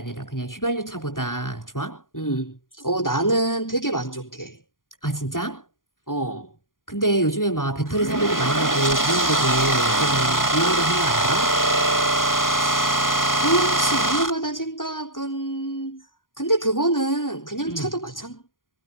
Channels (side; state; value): right; late; 0.90 ms